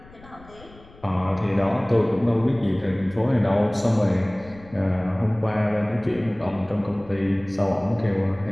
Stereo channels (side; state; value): left; noise; rumble, 22 dB below the sound